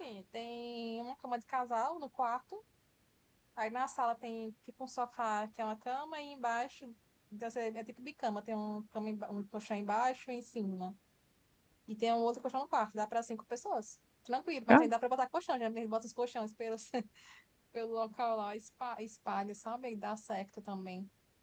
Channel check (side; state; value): both; identical; correlation 1.00